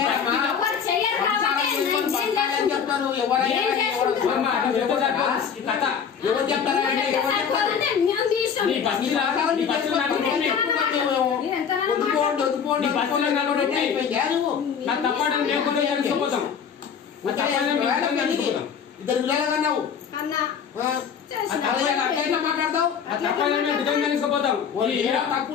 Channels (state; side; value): quieter; right; 7.1 dB